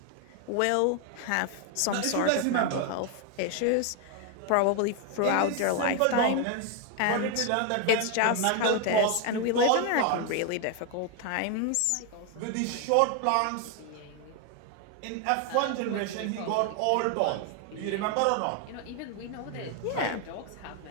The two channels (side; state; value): both; different; correlation 0.01